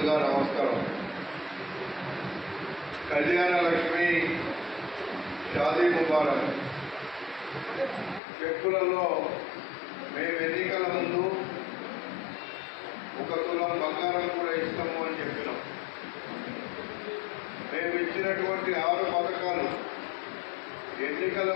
నమస్కారం. కళ్యాణ లక్ష్మి షాదీ ముబారక్ చెక్కులలో మేము ఎన్నికల ముందు 1 తులం బంగారం కూడా ఇస్తాము అని చెప్పినాం. మేము ఇచ్చినటువంటి 6 పథకాలు ఎన్నికల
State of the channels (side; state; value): right; drops out; at 8.2 s